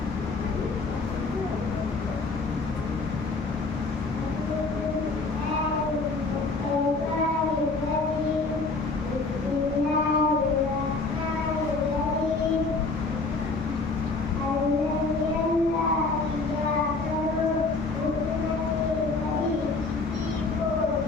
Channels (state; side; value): quieter; right; 3.7 dB